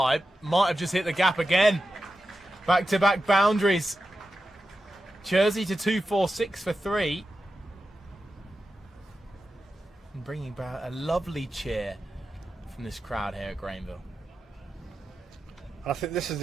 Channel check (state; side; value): normal; both; correlation 0.90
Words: might have just hit the gap again. Back-to-back boundaries. Jersey to 246 for 3. And bringing about a lovely cheer from this crowd here at Granville. I think this is